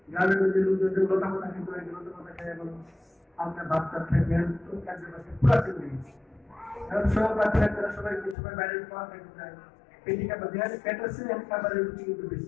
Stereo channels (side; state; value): right; drops out; at 8.3 s